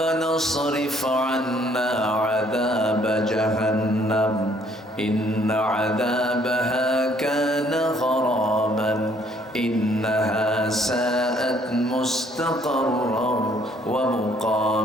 اصرف عنا عذاب جهنم إن عذابها كان غراما إنها ساءت مستقرا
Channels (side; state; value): both; normal; correlation 0.63